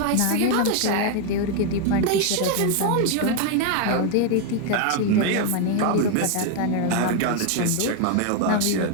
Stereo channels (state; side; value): different; both; correlation 0.01